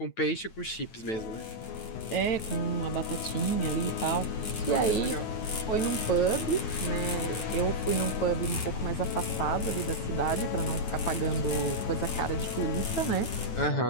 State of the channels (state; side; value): late; right; 9.1 ms